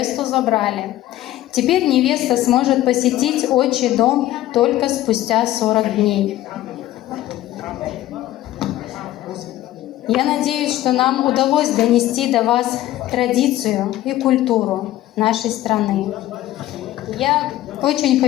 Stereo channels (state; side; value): quieter; right; 14.7 dB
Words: забрали. Теперь невеста сможет посетить отчий дом только спустя 40 дней. Я надеюсь, что нам удалось донести до вас традицию и культуру нашей страны. Я очень